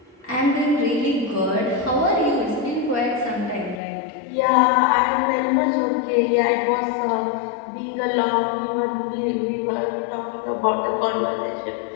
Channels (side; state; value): right; drops out; at 3.8 s